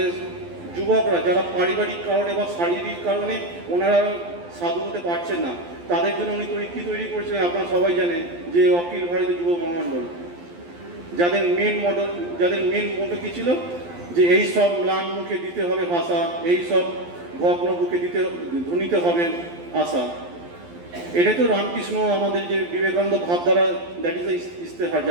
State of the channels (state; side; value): late; left; 12 ms